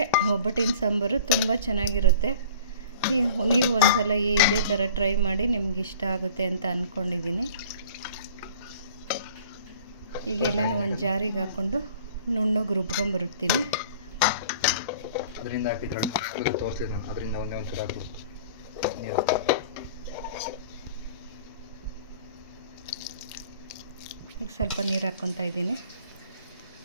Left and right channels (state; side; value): inverted; both; correlation -0.47